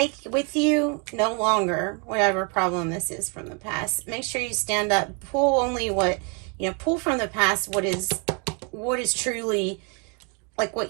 with you no longer whatever problem this is from the past. Make sure you stand up, pull only what, pull from the past what is truly, like, what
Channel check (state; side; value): quieter; left; 35.3 dB